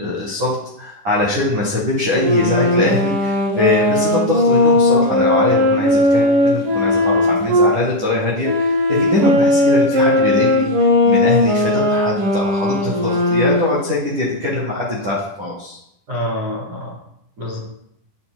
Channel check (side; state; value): left; late; 10 ms